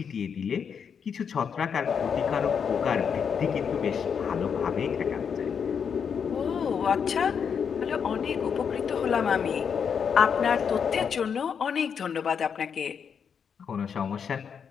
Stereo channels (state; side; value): quieter; right; 6.9 dB